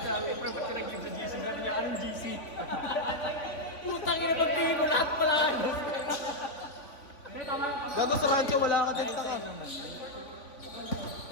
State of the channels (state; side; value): late; right; 3.5 ms